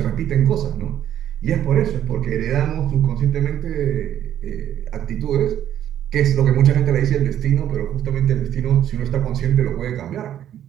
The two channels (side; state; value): left; quieter; 10.9 dB